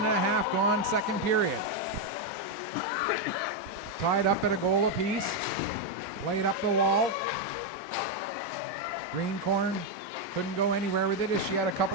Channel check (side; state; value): both; normal; correlation 0.02